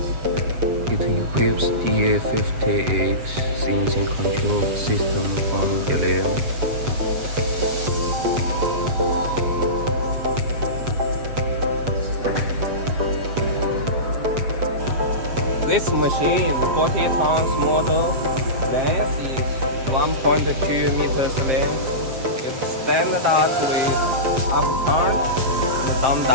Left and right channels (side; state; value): left; late; 7.6 ms